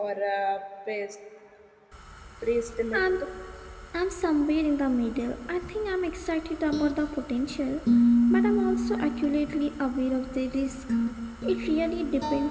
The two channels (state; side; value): identical; both; correlation 1.00